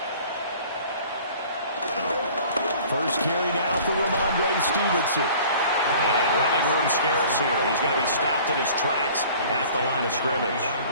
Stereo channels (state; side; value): inverted; both; correlation -0.48